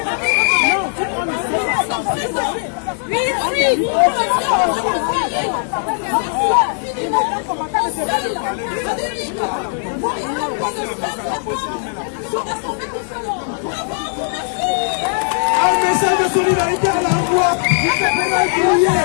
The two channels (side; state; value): right; silent; 64 dB below the other